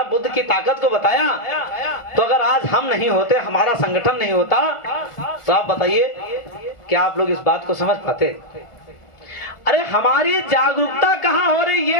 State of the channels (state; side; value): late; right; 1.4 ms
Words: बुद्ध की ताकत को बताया। तो अगर आज हम नहीं होते, हमारा संगठन नहीं होता, तो आप बताइए क्या आप लोग इस बात को समझ पाते? अरे हमारी जागरूकता कहाँ हो रही,